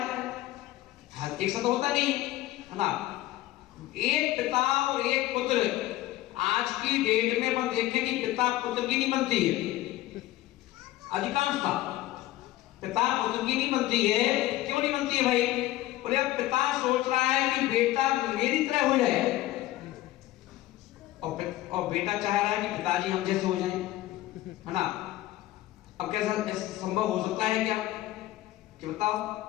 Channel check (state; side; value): quieter; right; 16.0 dB